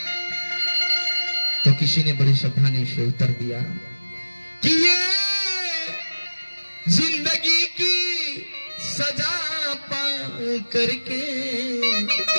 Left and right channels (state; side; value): inverted; both; correlation -1.00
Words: तो किसी ने बड़ी सावधानी से उत्तर दिया कि ये जिंदगी की सजा पा करके